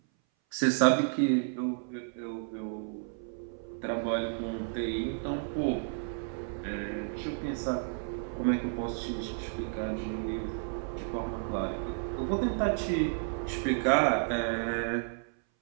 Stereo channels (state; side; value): silent; left; 56 dB below the other